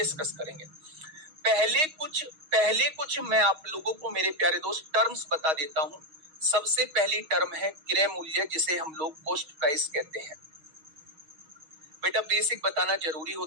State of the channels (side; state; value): left; late; 6.4 ms